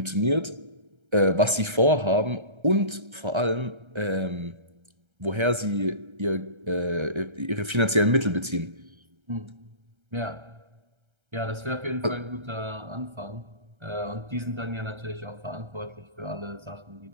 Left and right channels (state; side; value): late; left; 1.3 ms